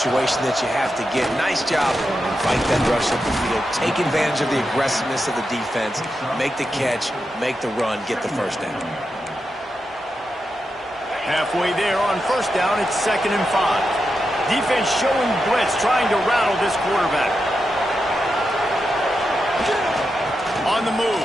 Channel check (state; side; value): normal; both; correlation 0.87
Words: that you have to get. Nice job. Fight that rush up the field. Take advantage of the aggressiveness of the defense. Make the catch. Make the run. Get the first down. Halfway there on first down, it's 2nd and 5. Defense showing blitz, trying to rattle this quarterback. On the